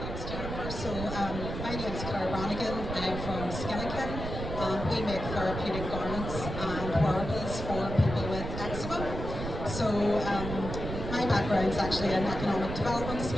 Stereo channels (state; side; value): noise; right; rumble, 6 dB below the sound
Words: Jennifer. So my name is Brannigan. I'm from Skinakin. We make therapeutic garments and wearables for people with eczema. So my background is actually in economic development.